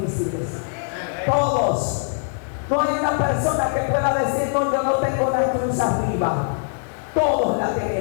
Todos. No hay una persona que pueda decir: no, yo no tengo una cruz arriba. Todos la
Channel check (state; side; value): silent; right; digital silence